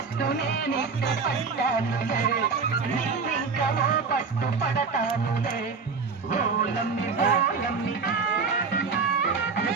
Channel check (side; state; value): left; quieter; 5.0 dB